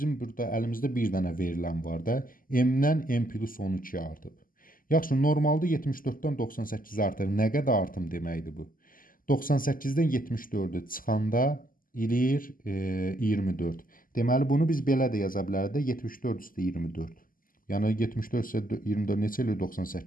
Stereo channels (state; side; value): late; right; 0.41 ms